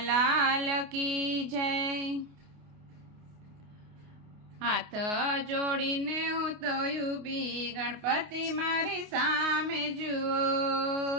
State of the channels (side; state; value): left; late; 29 ms